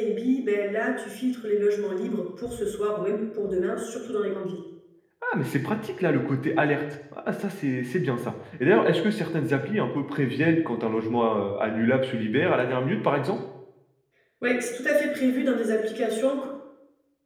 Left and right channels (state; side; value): identical; both; correlation 1.00